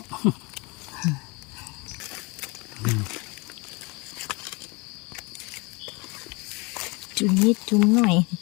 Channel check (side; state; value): right; quieter; 27.7 dB